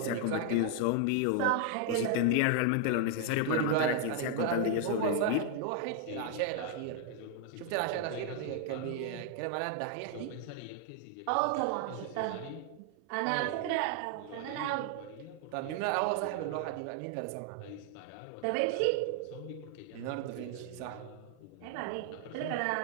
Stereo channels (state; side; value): different; both; correlation 0.00